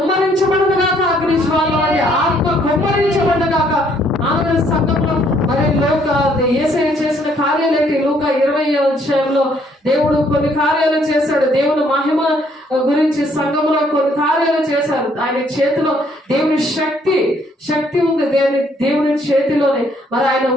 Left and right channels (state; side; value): normal; both; correlation 0.66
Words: గాక, అగ్నిజ్వాల ఆత్మ కుమ్మరించబడదు గాక. ఆమె సంఘంలో మరి యేసయ్య చేసిన కార్యాలేంటి? లూకా 20వ అధ్యాయంలో దేవుడు కొన్ని కార్యాలు చేశాడు. దేవుని మహిమ గురించి సంఘంలో కొన్ని కార్యాలు చేశారు. ఆయన చేతిలో దేవుని శక్తి ఉంది. దేవుని చేతిలోనే మరి ఆయన